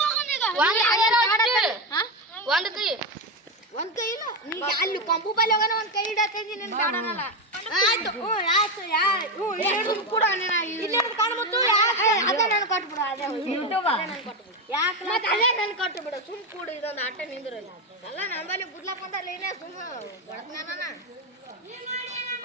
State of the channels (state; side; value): normal; both; correlation 0.12